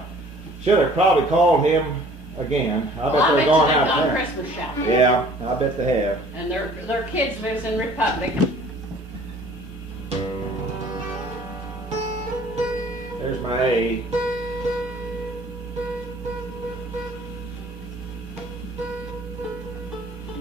should have probably called him again. I bet they're going out of town. Christmas shopping. Yeah, I bet they have. And their kids lives in Republic. There's my A.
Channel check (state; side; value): normal; both; correlation 0.53